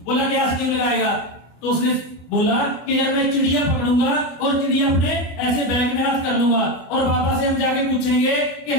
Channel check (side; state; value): right; late; 25 ms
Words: बोला क्या स्कीम लगाएगा? तो उसने बोला कि यार मैं चिड़िया पकड़ूंगा और चिड़िया अपने ऐसे बैग में हाथ कर लूंगा, और बाबा से हम जाके पूछेंगे कि